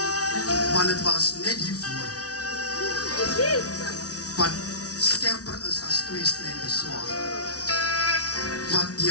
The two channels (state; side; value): late; right; 0.68 ms